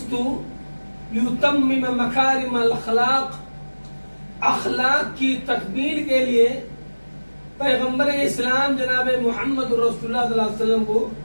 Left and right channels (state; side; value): inverted; both; correlation -1.00